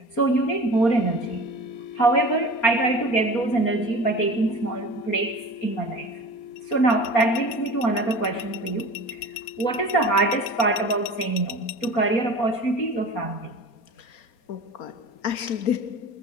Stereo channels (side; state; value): right; late; 4.3 ms